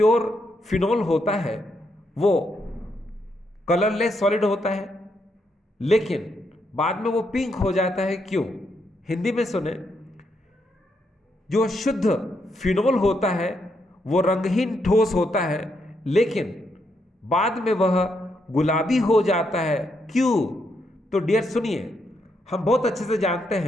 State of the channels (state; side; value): normal; both; correlation 0.78